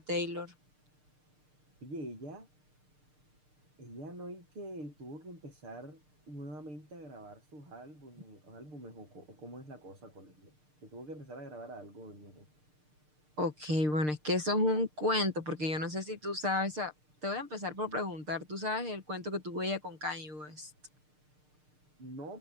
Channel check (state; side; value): late; left; 6.6 ms